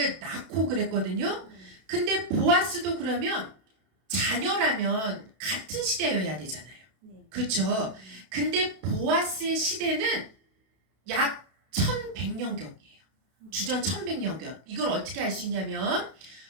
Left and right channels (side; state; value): left; late; 32 ms